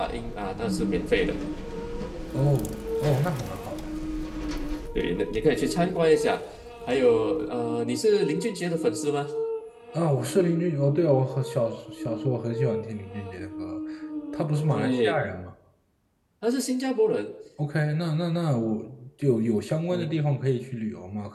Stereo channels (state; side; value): identical; both; correlation 1.00